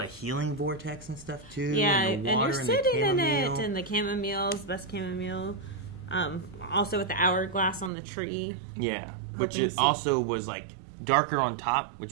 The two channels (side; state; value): left; drops out; at 7.9 s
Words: a healing vortex and stuff, too. Yeah, and the water and you're sitting in chamomile. it, and the chamomile's best chamomile. Also with the hourglass on the tree. Yeah, which also was, like, darker on top, which